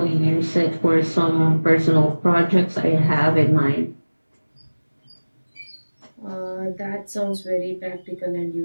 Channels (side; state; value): both; inverted; correlation -1.00